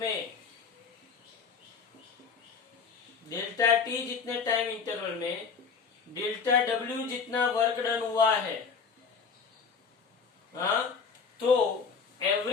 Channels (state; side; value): quieter; right; 5.6 dB